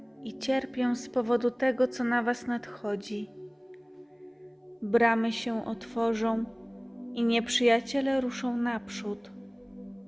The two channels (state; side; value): identical; both; correlation 1.00